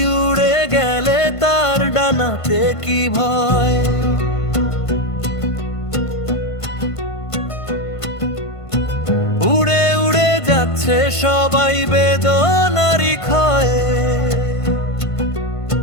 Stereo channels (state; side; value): late; right; 1.5 ms